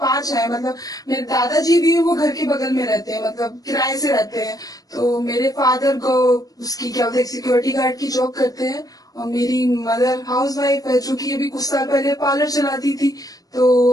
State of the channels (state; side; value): late; right; 0.18 ms